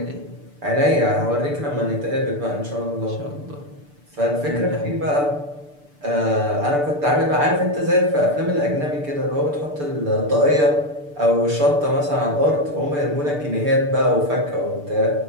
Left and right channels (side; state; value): left; late; 6.8 ms